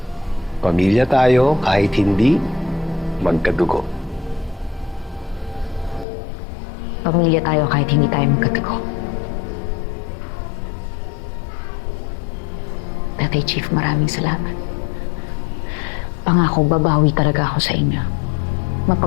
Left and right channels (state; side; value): drops out; right; at 6.1 s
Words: Pamilya tayo kahit hindi magkadugo. Pamilya tayo kahit hindi tayo magkatago. Tatay Chief, maraming salamat. Pangako, babawi talaga ako sa inyo.